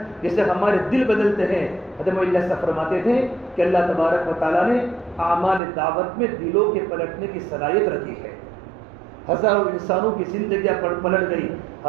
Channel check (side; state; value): left; drops out; at 5.6 s